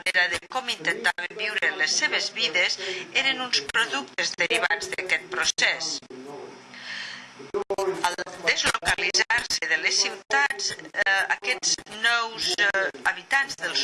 de com intentaven viure les seves vides eren uns productes derivats d'aquest procés. Al deslocalitzar-se de les ciutats, aquests nous habitants dels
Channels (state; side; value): identical; both; correlation 1.00